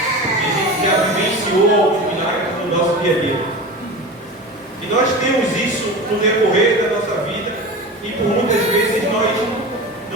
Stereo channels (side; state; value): both; normal; correlation 0.30